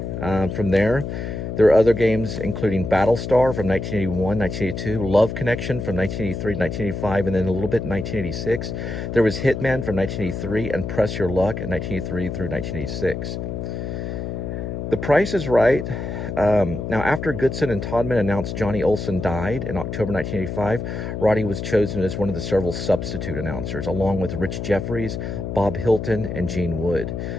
From there were other games, including Battlestar from 1981, 1982, Love Connection from 1983 to 1985, and then a little bit in 1986. There was Hitman from 1983 and Press Your Luck in 1983 through 1986. The Price is Right. Now, after Goodson and Todman announced Johnny Olson died in October 1985, Roddy was chosen as one of the several substitute announcers, along with Rich Jeffries, Bob Hilton, and Gene Wood,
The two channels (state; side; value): noise; left; hum, 5 dB below the sound